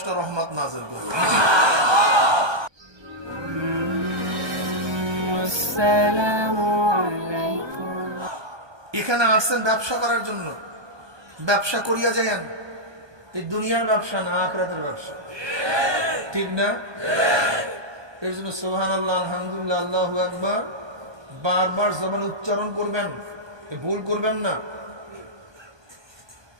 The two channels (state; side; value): late; left; 1.2 ms